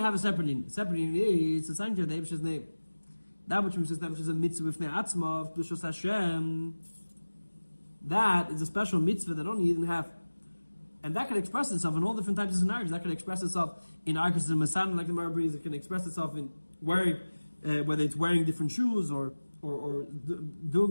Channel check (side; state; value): both; inverted; correlation -1.00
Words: have a separate in. It's a sanctuary of the Eibishter's name. That which is a mitzvah with Ne'atzma of Dushos Hashem. That is a special mitzvah that only Yidden have. And that can express itself in all different types of scenarios. That can express itself in arguments in Masan, like the Gemara brings. It can express itself in wearing, whether it's wearing different shoes or